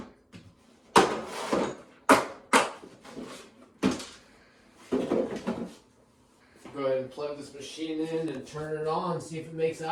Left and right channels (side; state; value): both; identical; correlation 1.00